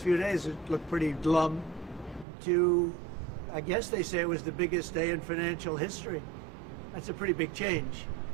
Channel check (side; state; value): left; drops out; at 2.2 s